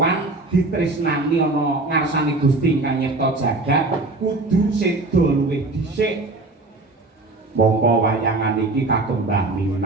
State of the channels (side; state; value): left; quieter; 3.2 dB